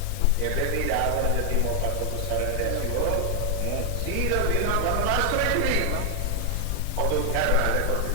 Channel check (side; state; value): both; different; correlation 0.00